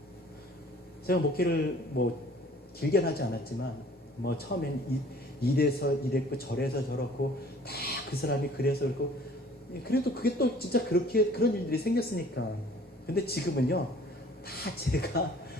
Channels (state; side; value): normal; both; correlation 0.52